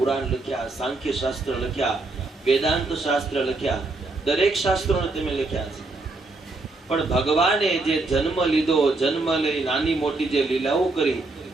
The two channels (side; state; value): left; quieter; 3.3 dB